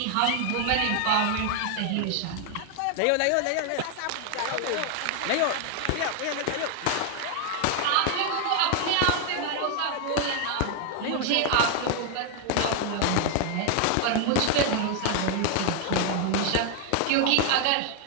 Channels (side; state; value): both; different; correlation 0.00